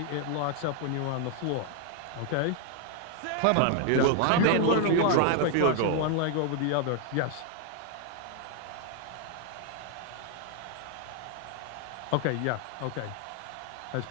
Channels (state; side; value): different; both; correlation 0.00